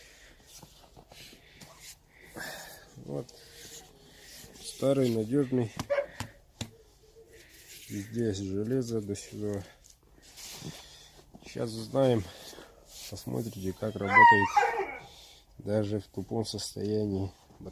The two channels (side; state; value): both; identical; correlation 1.00